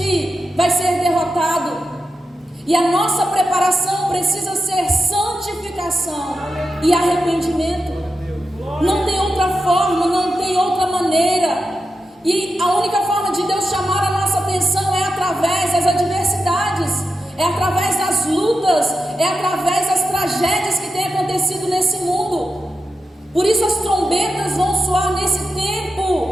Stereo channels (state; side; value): normal; both; correlation 0.89